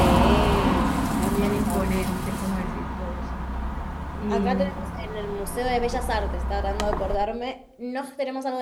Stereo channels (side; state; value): both; identical; correlation 1.00